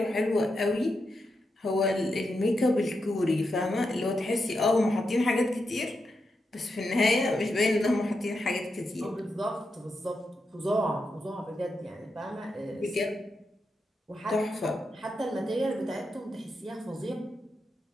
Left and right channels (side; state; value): both; normal; correlation 0.86